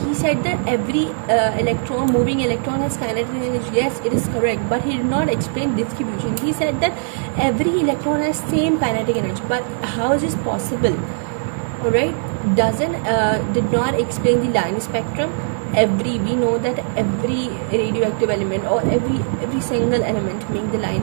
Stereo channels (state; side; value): silent; left; digital silence